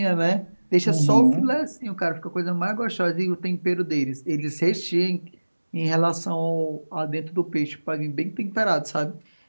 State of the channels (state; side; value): inverted; both; correlation -1.00